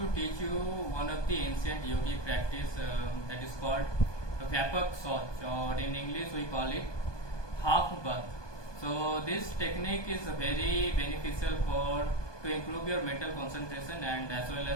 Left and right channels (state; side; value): late; right; 1.2 ms